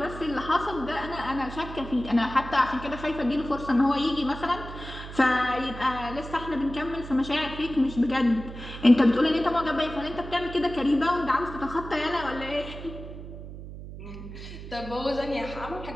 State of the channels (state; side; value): noise; right; hum, 11 dB below the sound